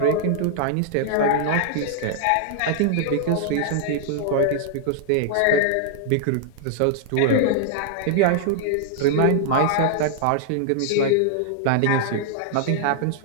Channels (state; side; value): different; both; correlation -0.01